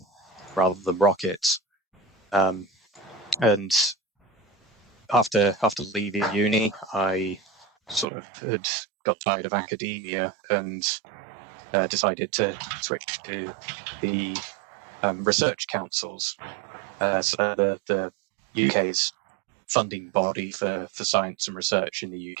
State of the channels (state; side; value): drops out; left; at 8.1 s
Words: rather than rockets. And after leaving uni, I sort of had got tired of academia and decided to switch to the research councils. So they're the UK's funding body for science and research in the